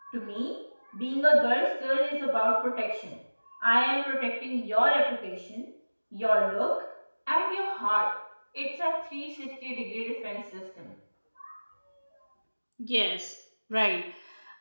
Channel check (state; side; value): inverted; both; correlation -1.00